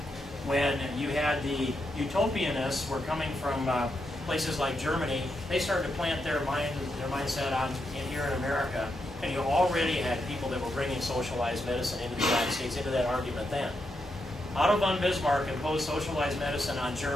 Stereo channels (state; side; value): normal; both; correlation 0.83